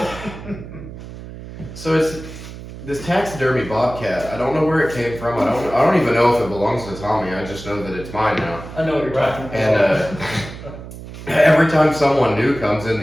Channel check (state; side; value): noise; right; hum, 13 dB below the sound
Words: so it's this taxidermy bobcat. I don't know where it came from. I don't even know if it belongs to Tommy. I just know that it's mine now. I know what you're talking about. And every time someone new comes in